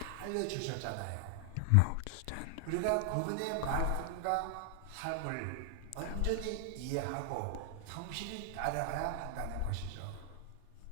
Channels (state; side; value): different; both; correlation 0.00